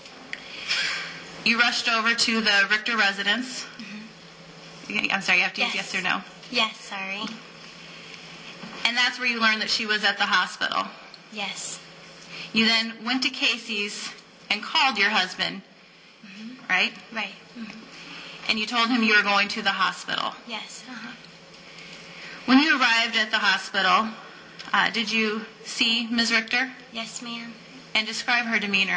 You rushed over to the Richter residence. I'm sorry, you have to use yes or no? Yes, sorry. And that's where you learned that she was at the hospital. Yes. You then went to Casey's and called your husband, right? Right. And you told him you were going to the hospital. Yes. When you arrived at the hospital, did you see Ms. Richter? Yes, ma'am. And describe her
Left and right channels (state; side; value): identical; both; correlation 1.00